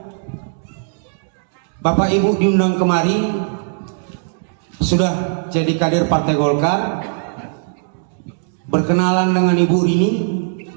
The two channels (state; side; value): silent; left; digital silence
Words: Bapak Ibu diundang kemari, sudah jadi kader Partai Golkar, berkenalan dengan Ibu Rini.